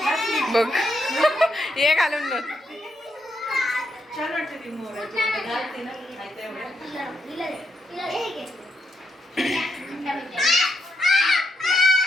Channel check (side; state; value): both; normal; correlation 0.80